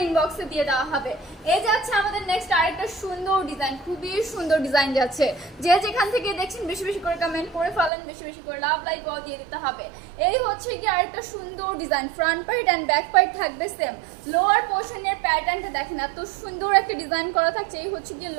ইনবক্সে দিয়ে দেওয়া হবে। এই যাচ্ছে আমাদের নেক্সট আরেকটা সুন্দর ডিজাইন, খুবই সুন্দর ডিজাইন যাচ্ছে। যে যেখান থেকে দেখছেন বেশি বেশি করে কমেন্ট করে ফেলেন, বেশি বেশি করে লাভ লাইক দিয়ে দিতে হবে। এই হচ্ছে কি আরেকটা সুন্দর design. Front part and back part থাকবে সেম। লোয়ার পোর্শনের প্যাটার্নটা দেখেন, এত সুন্দর একটা ডিজাইন করা থাকছে। এই হচ্ছে কি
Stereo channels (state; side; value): drops out; left; at 7.9 s